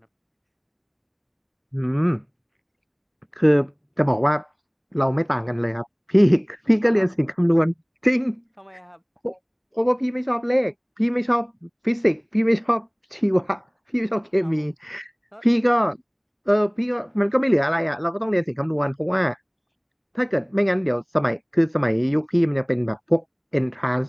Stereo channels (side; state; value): both; identical; correlation 1.00